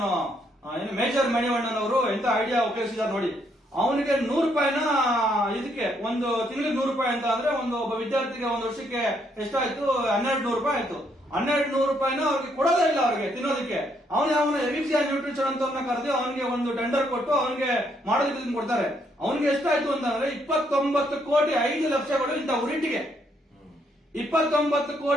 ಏನು ಮೇಜರ್ ಮಣಿವಣ್ಣನ್ ಅವರು ಎಂತ ಐಡಿಯಾ ಉಪಯೋಗಿಸಿದಾರೆ ನೋಡಿ. ಅವನಿಗೆ 100 ರೂಪಾಯಿನ ಇದಕ್ಕೆ ಒಂದು ತಿಂಗಳಿಗೆ 100 ರೂಪಾಯಿ ಅಂತ ಅಂದ್ರೆ ಒಬ್ಬ ವಿದ್ಯಾರ್ಥಿಗೆ ಒಂದು ವರ್ಷಕ್ಕೆ ಎಷ್ಟಾಯ್ತು, 1200 ರೂಪಾಯಿ ಆಯ್ತು. 1200 ರೂಪಾಯಿನ ಅವ್ರಿಗೆ ಕೊಡೋದೇ ಇಲ್ಲ, ಅವ್ರಿಗೆ ತಿನ್ನೋದಕ್ಕೆ. ಅವನ ಎವಿಕ್ಸಿಯಾನ್ ನ್ಯೂಟ್ರಿಷನ್ ಅಂತ ಕರೆದು ಅವನಿಗೆ ಒಂದು ಟೆಂಡರ್ ಕೊಟ್ಟು ಅವನಿಗೆ ಮಾಡೋದಕ್ಕೆ ಕೊಡ್ತಾರೆ. ಅವನಿಗೆ ಎಷ್ಟಾಯ್ತು ಅಂತಂದ್ರೆ 29 ಕೋಟಿ 5 ಲಕ್ಷಗಳು ಇಂಥ ಉರಿಟ್ಟಿಗೆ. 29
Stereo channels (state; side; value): normal; both; correlation 0.72